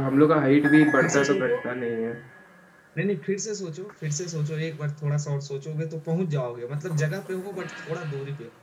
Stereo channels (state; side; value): identical; both; correlation 1.00